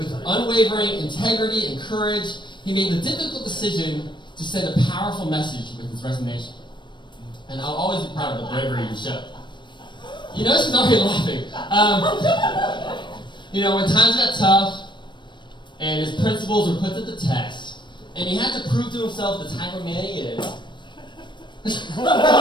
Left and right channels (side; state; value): right; late; 0.22 ms